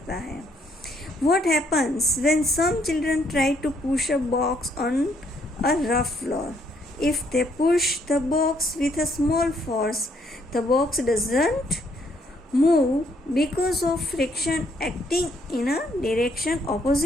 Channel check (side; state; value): both; normal; correlation 0.70